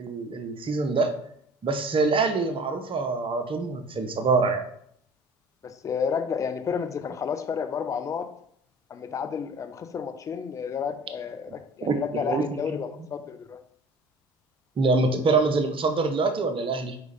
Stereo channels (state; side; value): normal; both; correlation 0.44